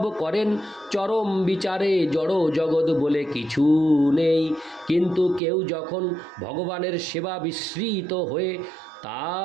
করেন। চরম বিচারে জড় জগৎ বলে কিছু নেই, কিন্তু কেউ যখন ভগবানের সেবা বিস্মৃত হয়ে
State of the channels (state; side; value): drops out; left; at 5.4 s